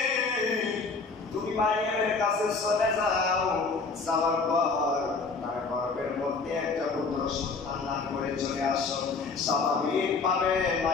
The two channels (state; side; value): quieter; right; 4.3 dB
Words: তুমি মারিয়ামের কাছে চলে যাও, যাওয়ার পর তার গর্ভের মধ্যে একটা পুত্র সন্তান দান করে চলে আসো। স্বাভাবিকভাবে